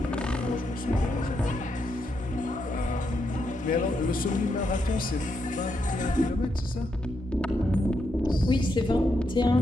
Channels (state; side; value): normal; both; correlation 0.81